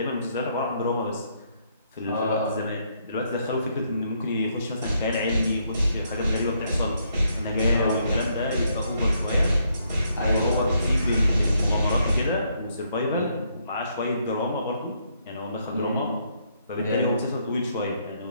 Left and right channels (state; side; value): inverted; both; correlation -0.73